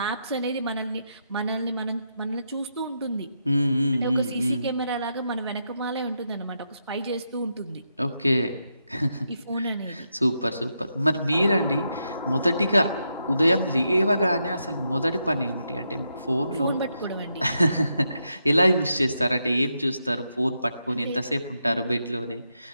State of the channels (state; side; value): inverted; both; correlation -0.83